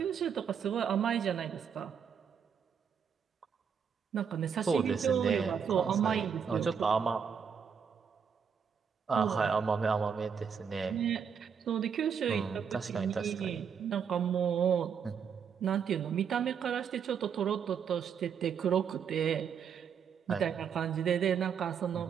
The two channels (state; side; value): quieter; left; 7.1 dB